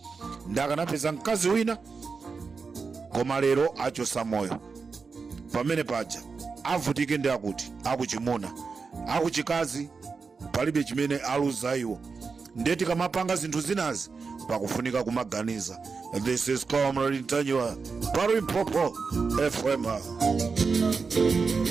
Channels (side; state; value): left; quieter; 4.9 dB